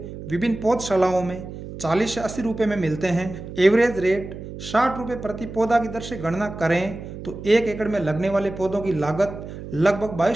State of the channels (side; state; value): right; noise; hum, 11 dB below the sound